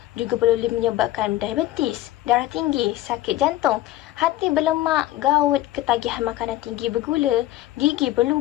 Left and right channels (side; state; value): right; quieter; 15.2 dB